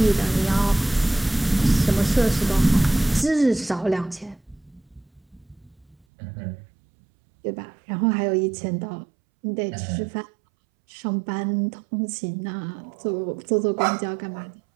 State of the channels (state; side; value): drops out; left; at 6.1 s